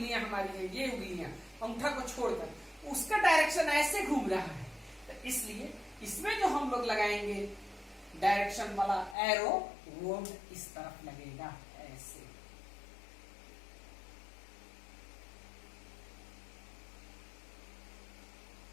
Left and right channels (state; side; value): drops out; right; at 9.2 s